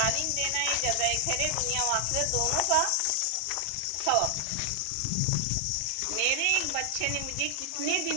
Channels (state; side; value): different; both; correlation 0.00